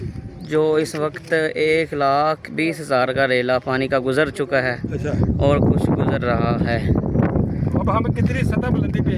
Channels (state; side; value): identical; both; correlation 1.00